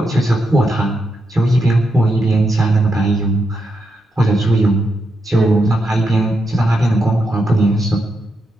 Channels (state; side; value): normal; both; correlation 0.84